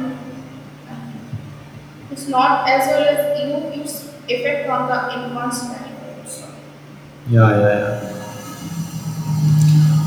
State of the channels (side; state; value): both; identical; correlation 1.00